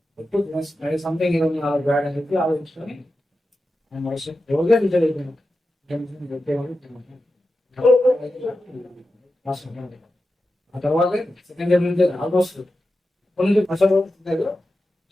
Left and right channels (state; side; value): normal; both; correlation 0.91